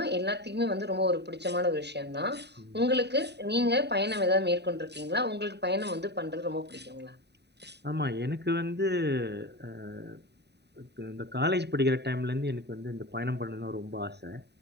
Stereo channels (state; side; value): late; left; 0.49 ms